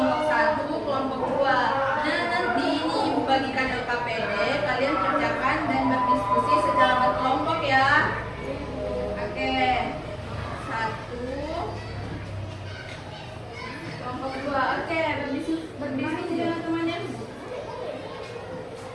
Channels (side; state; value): both; identical; correlation 1.00